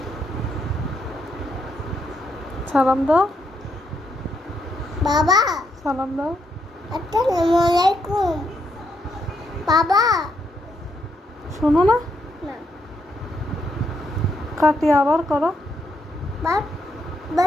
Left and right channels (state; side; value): normal; both; correlation 0.77